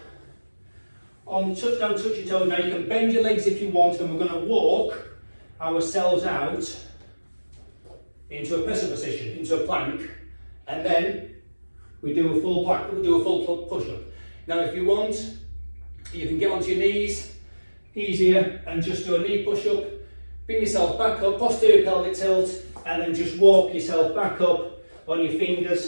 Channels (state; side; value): inverted; both; correlation -1.00